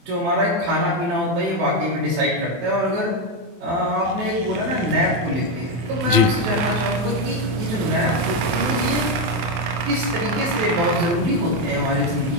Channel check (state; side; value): late; left; 23 ms